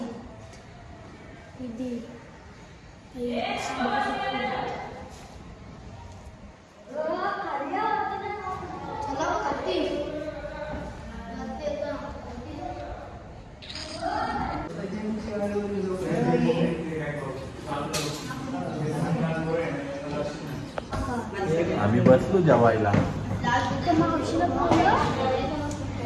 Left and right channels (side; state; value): both; identical; correlation 1.00